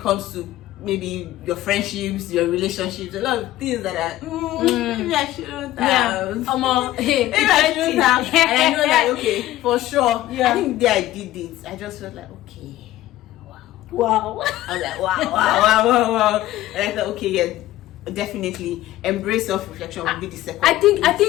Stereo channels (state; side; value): quieter; right; 15.1 dB